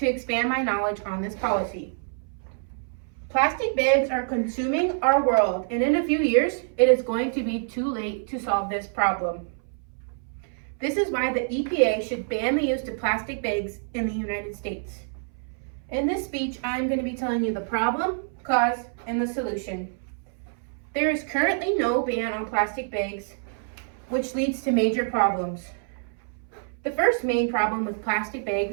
expand my knowledge on this policy. Plastic bags are consuming our world, and in a few years, it is going to be too late to solve this problem. This is why the EPA should ban the use of plastic bags in the United States. In this speech, I'm going to be telling you the problem, cause, and the solution. There is currently no ban on plastic bags, which leads to major problems. The first main problem with plastic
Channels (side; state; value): left; silent; 61 dB below the other